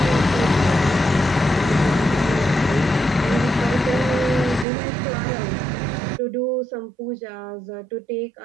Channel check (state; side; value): drops out; left; at 4.7 s